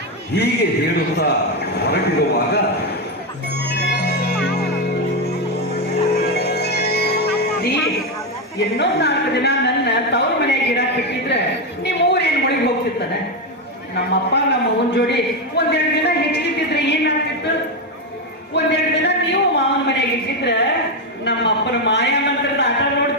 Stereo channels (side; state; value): both; normal; correlation 0.08